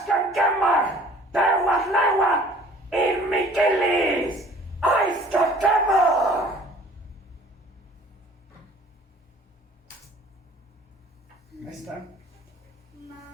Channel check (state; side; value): normal; both; correlation 0.51